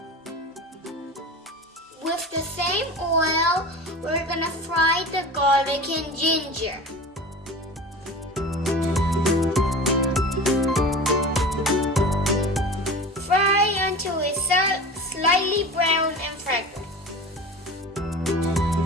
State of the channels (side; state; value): both; normal; correlation 0.35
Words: With the same oil, we're gonna fry the garlic and ginger. Fry until it's slightly brown and fragrant.